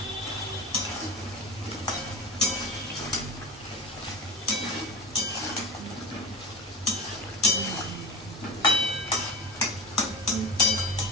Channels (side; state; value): both; normal; correlation 0.31